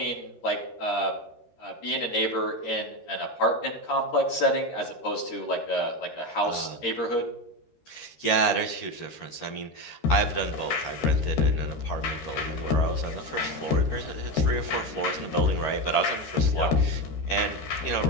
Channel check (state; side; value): late; right; 13 ms